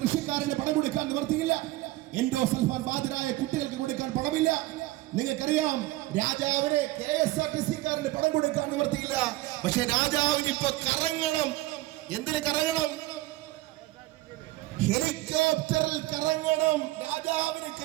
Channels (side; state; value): left; quieter; 18.3 dB